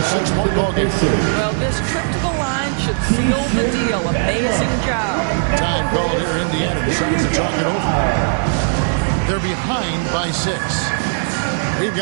6-point ball game. Well, this trip to the line should seal the deal. Amazing job. Time called here. Indiana decides to talk it over. They're behind by 6. We've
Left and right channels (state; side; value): silent; left; digital silence